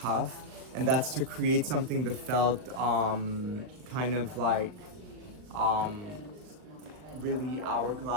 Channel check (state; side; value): late; left; 39 ms